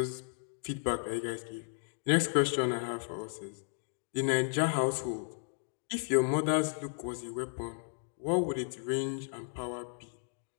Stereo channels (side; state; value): right; silent; digital silence